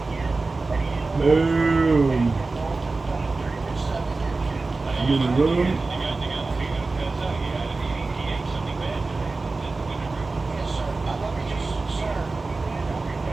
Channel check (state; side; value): quieter; left; 3.6 dB